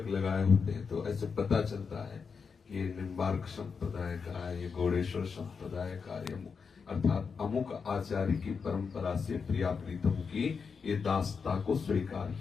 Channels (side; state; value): right; quieter; 5.6 dB